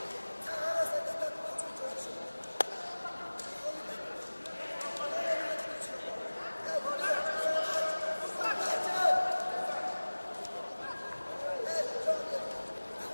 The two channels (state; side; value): inverted; both; correlation -1.00